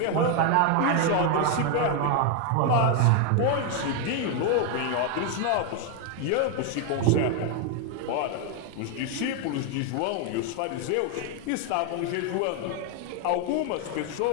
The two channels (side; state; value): both; different; correlation 0.01